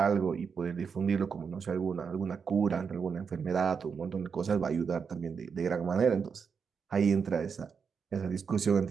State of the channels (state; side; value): quieter; left; 6.1 dB